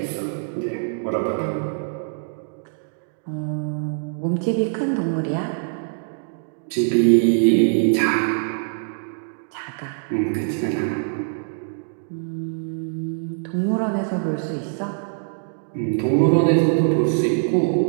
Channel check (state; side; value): silent; left; digital silence